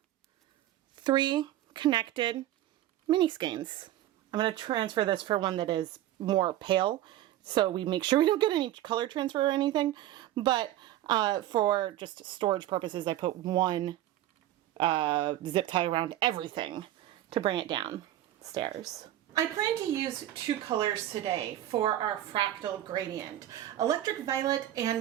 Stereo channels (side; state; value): left; quieter; 13.5 dB